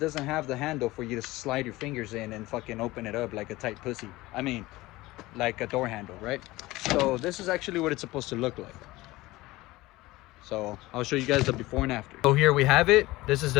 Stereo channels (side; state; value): right; quieter; 19.3 dB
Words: have the handle for you to slide your fingers in and fucking open it up like a tight pussy. I mean, like a door handle, right? So this is actually what it's supposed to look like. So I'll show you guys the before and after. So here we have it. This is